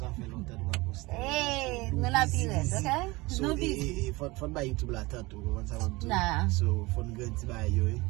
fait longtemps de pas poster. Hey, nous la pire, ok? So, nous busy. faut pas YouTube là tant tout. Nah. So, faut nous grandir ba yo.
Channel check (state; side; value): quieter; left; 22.6 dB